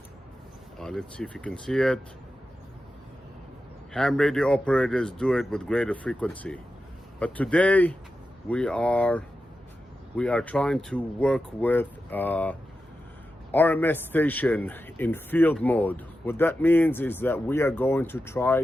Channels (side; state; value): both; normal; correlation 0.91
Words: Let's see if you can see it. Ham radio operators do it with greater frequency. But today we are trying to work with RMS station in field mode. What that means is that we are going to